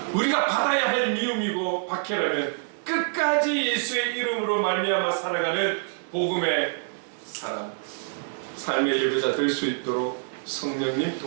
우리가 받아야 할 미움이고 박해라면 끝까지 예수의 이름으로 말미암아 살아가는 복음의 사람, 삶의 예배자 될 수 있도록 성령님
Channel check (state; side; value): silent; left; 61 dB below the other